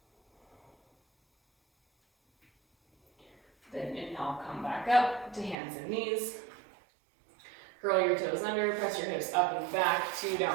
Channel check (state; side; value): drops out; left; at 5.6 s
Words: Then inhale, come back up to hands and knees. Curl your toes under, press your hips up and back to